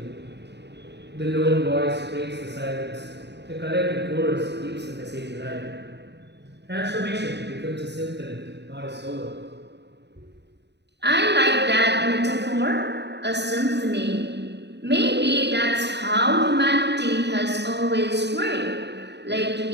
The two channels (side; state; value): left; late; 0.50 ms